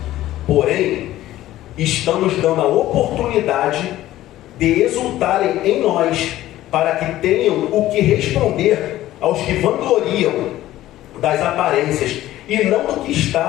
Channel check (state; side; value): quieter; right; 14.7 dB